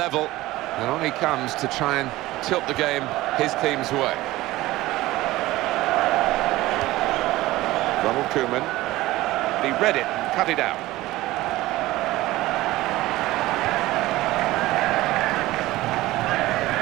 and on he comes to try and tilt the game his team's way. Ronald Koeman, he read it and cut it out.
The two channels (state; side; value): quieter; left; 17.7 dB